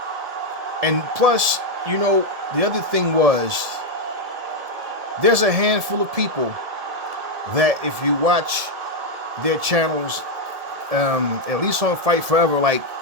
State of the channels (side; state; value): left; late; 1.8 ms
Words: And plus, you know, the other thing was, there's a handful of people that if you watch their channels, at least on Fight Forever, like,